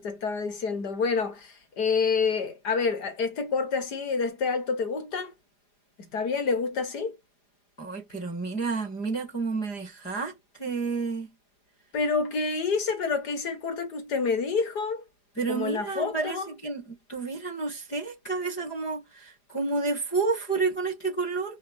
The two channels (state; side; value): late; right; 4.9 ms